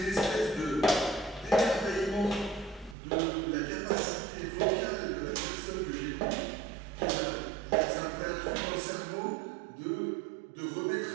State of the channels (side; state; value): left; drops out; at 3.0 s